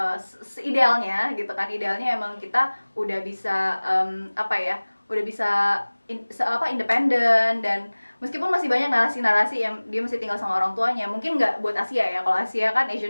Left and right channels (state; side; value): inverted; both; correlation -1.00